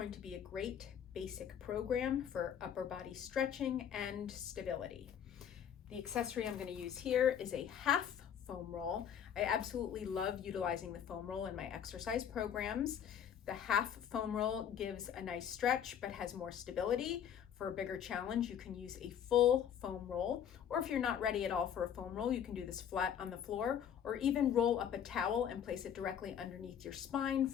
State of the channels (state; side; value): quieter; right; 8.8 dB